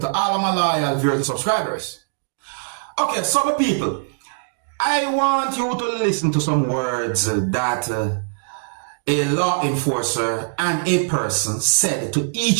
all of my loyal viewers and subscribers. Okay, so my people, I want you to listen to some words that a law enforcer and a person said to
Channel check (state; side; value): silent; left; digital silence